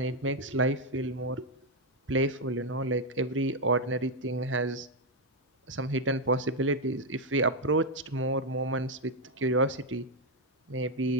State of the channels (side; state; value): both; normal; correlation 0.02